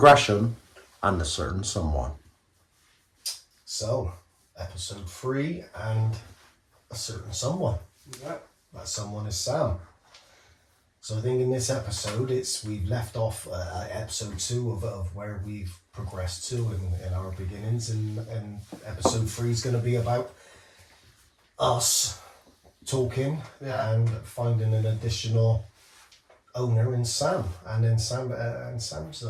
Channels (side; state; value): both; identical; correlation 1.00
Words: and a Certain Someone. So, episode 3 and a certain someone. Yeah. That someone is Sam. So I think in this episode, we've left off episode 2 of where we've progressed to in our beginnings, and episode 3 is going to be about us talking and finding an additional owner in Sam, and then Sam's